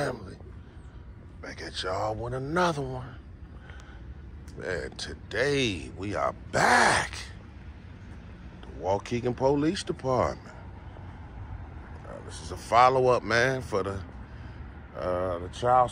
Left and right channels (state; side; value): identical; both; correlation 1.00